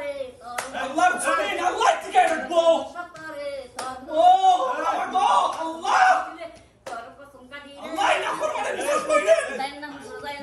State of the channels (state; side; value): identical; both; correlation 1.00